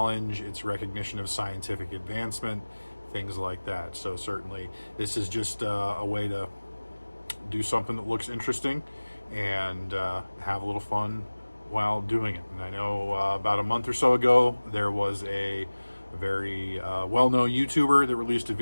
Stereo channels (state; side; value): inverted; both; correlation -1.00